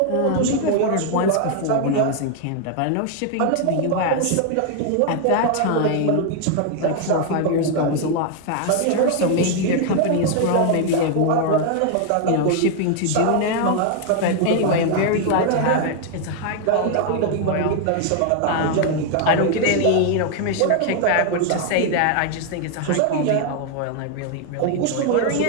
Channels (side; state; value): both; different; correlation 0.00